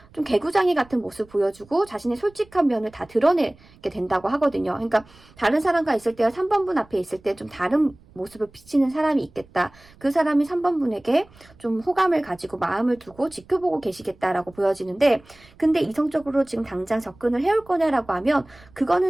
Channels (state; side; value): noise; right; rumble, 26 dB below the sound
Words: 좀 개구장이 같은 모습 보여주고 자신의 솔직한 면을 다 드러내게 된다고 하거든요. 그러니까 다른 사람과 있을 때와 3번분 앞에 있을 때 좀 다른 모습을 비치는 사람이 있겠다. 그 사람이 3번분에게 좀 호감을 가지고 마음을 두고 지켜보고 계시겠다라고 보여지는데, 근데 이성적으로 지금 당장 접근을 해올 거냐라고 하면